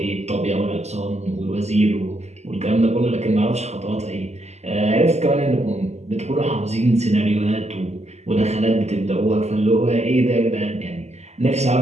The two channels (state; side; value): late; left; 0.32 ms